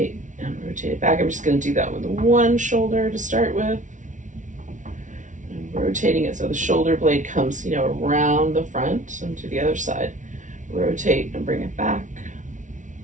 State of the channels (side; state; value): left; late; 0.37 ms